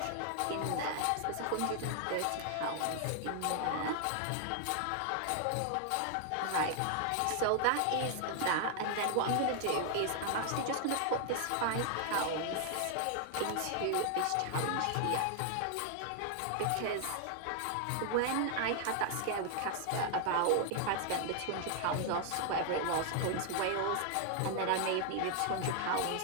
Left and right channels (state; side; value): different; both; correlation 0.00